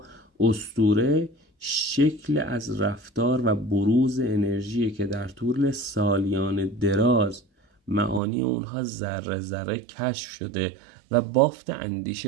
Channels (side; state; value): left; drops out; at 8.2 s